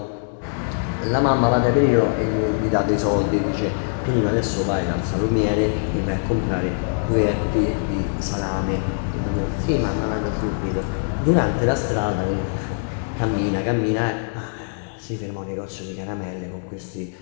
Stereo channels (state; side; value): silent; right; digital silence